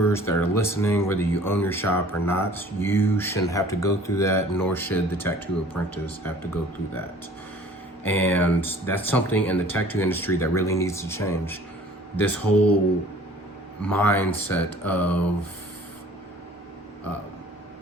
that are listening, whether you own your shop or not, you shouldn't have to go through that, nor should the tattoo apprentice have to go through that. And that's something in the tattoo industry that really needs to change. This whole mindset of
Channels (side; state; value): both; normal; correlation 0.50